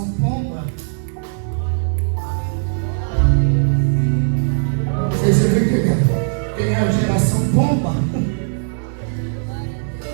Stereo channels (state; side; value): silent; left; digital silence